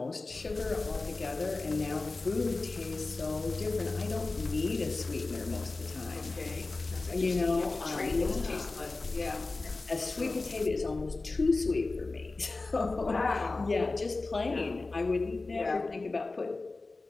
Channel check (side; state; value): right; quieter; 3.5 dB